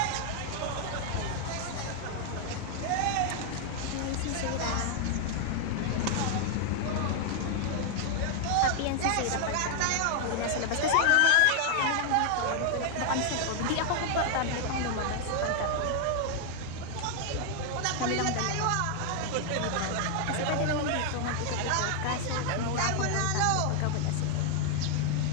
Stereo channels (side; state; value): both; different; correlation 0.00